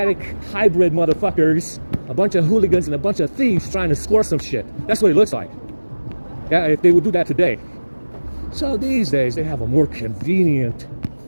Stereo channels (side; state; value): both; inverted; correlation -1.00